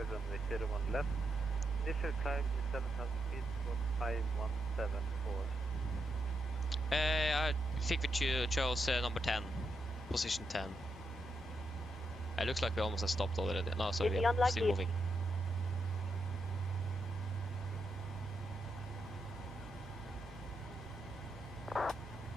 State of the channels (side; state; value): both; normal; correlation 0.83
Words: runway 01 left. Initial climb is 7,000 feet, 5174. I think we chose number 10. Position 10. It looks like we almost have stopped already. No, sorry, Is we are unlikely? still moving.